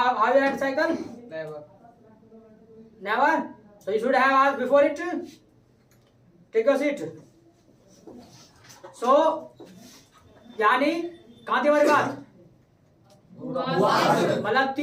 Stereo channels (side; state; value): both; identical; correlation 1.00